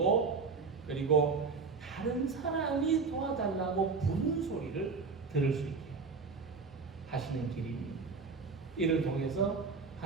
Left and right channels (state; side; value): quieter; left; 4.7 dB